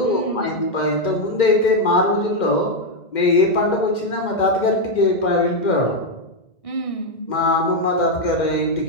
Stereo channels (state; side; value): late; right; 2.1 ms